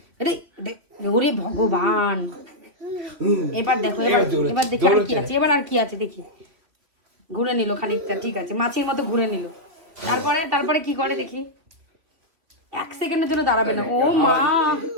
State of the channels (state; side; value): late; left; 3.1 ms